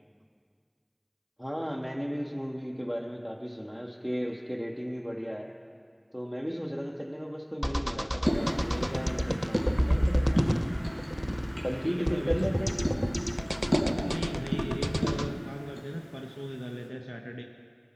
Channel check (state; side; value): identical; both; correlation 1.00